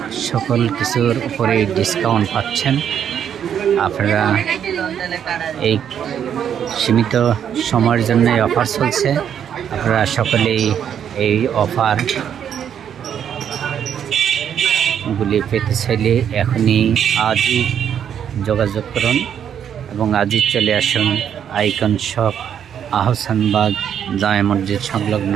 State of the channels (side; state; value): left; quieter; 8.8 dB